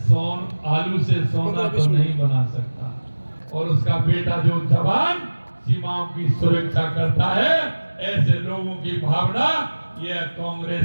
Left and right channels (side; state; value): both; inverted; correlation -1.00